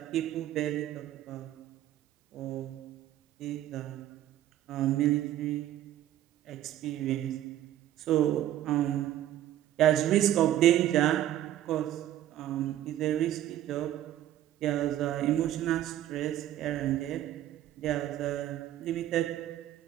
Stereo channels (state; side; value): quieter; left; 12.7 dB